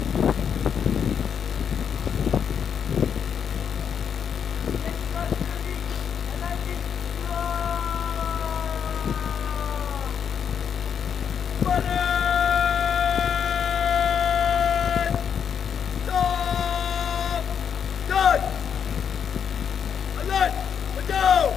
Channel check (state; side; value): quieter; right; 7.6 dB